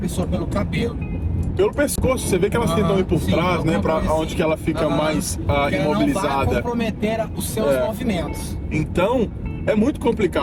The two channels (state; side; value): identical; both; correlation 1.00